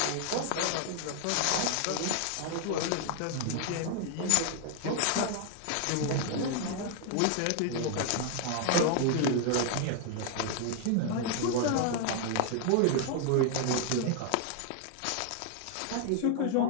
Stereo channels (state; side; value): different; both; correlation 0.00